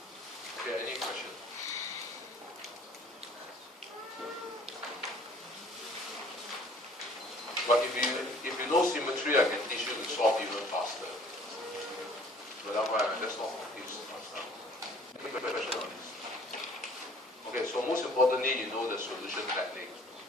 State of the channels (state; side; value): normal; both; correlation 0.54